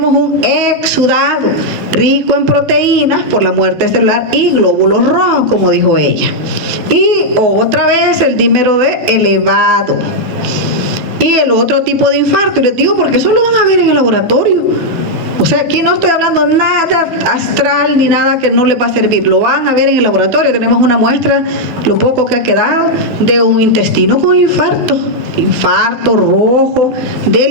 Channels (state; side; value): late; left; 12 ms